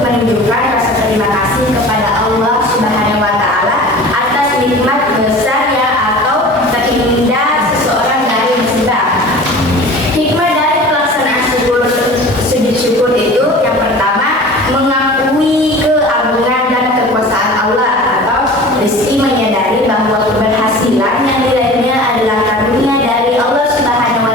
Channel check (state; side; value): normal; both; correlation 0.40